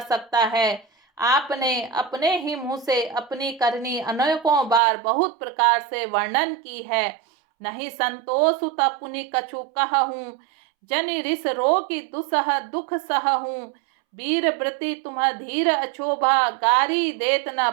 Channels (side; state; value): left; drops out; at 4.8 s